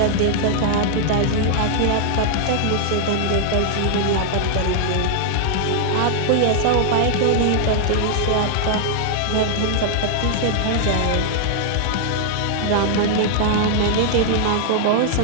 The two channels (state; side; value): different; both; correlation -0.01